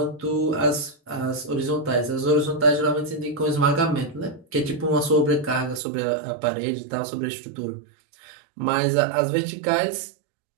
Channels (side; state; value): left; drops out; at 5.8 s